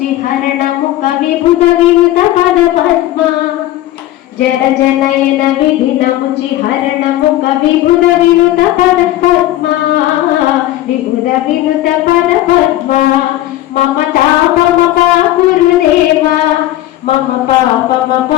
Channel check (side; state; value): right; quieter; 14.9 dB